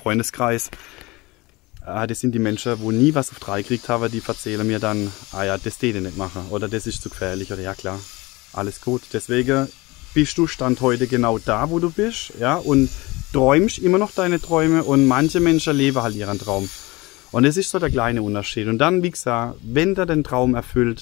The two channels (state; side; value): quieter; right; 22.5 dB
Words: Das sind die Menschen, wo nie was auf 3 gekriegt haben, die erzählen mir dann, ja, das die nicht machen oder das ist zu gefährlich oder ja klar, alles gut. Deswegen bist du Stand heute genau da, wo du bist, ja, und träumst immer noch deine Träume und manche Menschen leben halt ihren Traum. Und das ist so der kleine Unterschied. Und dann, wie gesagt, wenn der den Traum